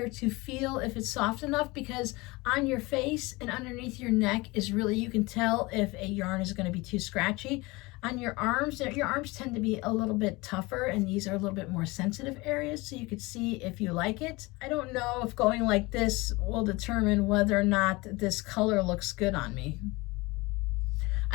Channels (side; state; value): right; quieter; 23.3 dB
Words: to feel if it's soft enough, because on your face and underneath your neck is really, you can tell if a yarn is going to be too scratchy. On your arms tend to be a little bit tougher, and these are a little bit more sensitive areas, so you could see if you like it. I don't know if going like this will determine whether or not this color looks good on me.